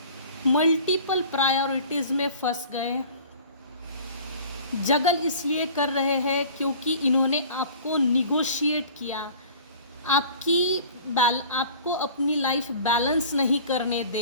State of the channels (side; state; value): both; inverted; correlation -0.45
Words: मल्टीपल प्रायोरिटीज़ में फंस गए। जगल इसलिए कर रहे हैं क्योंकि इन्होंने आपको निगोशिएट किया, आपको अपनी लाइफ बैलेंस नहीं करने